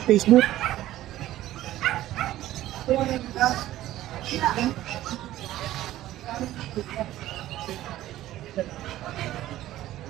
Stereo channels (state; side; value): quieter; left; 14.5 dB